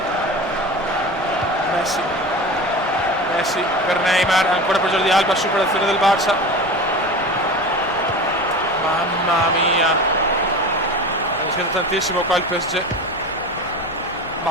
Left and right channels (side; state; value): both; normal; correlation 0.31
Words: Messi per Neymar, ancora per Jordi Alba, superazione del Barça. Mamma mia, ha rischiato tantissimo qua il PSG.